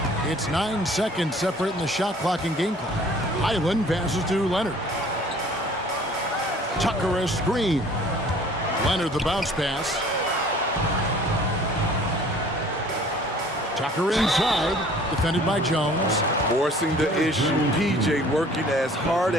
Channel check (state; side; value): normal; both; correlation 0.52